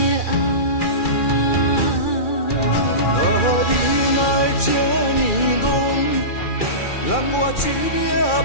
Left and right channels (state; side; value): late; right; 2.4 ms